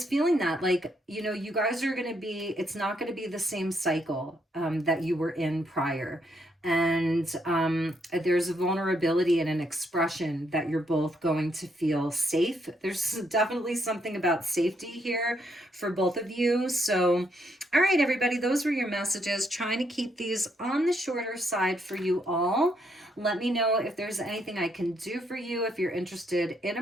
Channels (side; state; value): both; normal; correlation 0.75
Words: feeling that, like, you guys are going to be, it's not going to be the same cycle that you were in prior. And there's a vulnerability and an expression that you're both going to feel safe. There's definitely something about safety here for both of you. So, all right, everybody, those were your messages. Trying to keep these on the shorter side for you all. Let me know if there's anything I can do for you. If you're interested in a